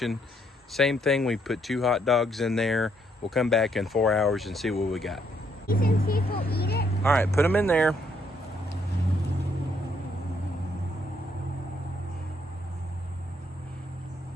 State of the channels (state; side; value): normal; both; correlation 0.71